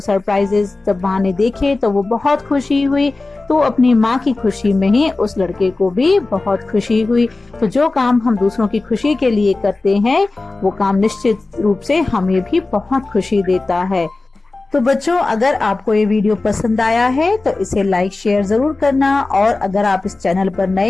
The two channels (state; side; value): quieter; right; 3.3 dB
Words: जब माँ ने देखे तो वो बहुत खुशी हुई। तो अपनी माँ की खुशी में ही उस लड़के को भी बहुत खुशी हुई। तो जो काम हम दूसरों की खुशी के लिए करते हैं वो काम निश्चित रूप से हमें भी बहुत खुशी देता है। तो बच्चों, अगर आपको ये वीडियो पसंद आया है तो इसे लाइक शेयर जरूर करना। और अगर आप इस चैनल पर